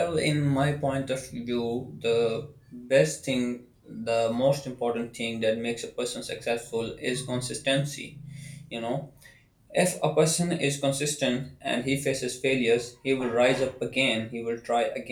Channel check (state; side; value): identical; both; correlation 1.00